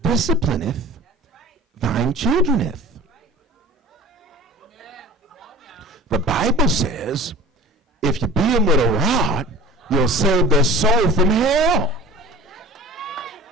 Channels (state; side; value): normal; both; correlation 0.40